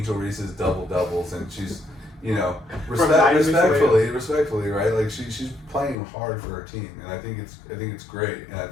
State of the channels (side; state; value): right; drops out; at 6.0 s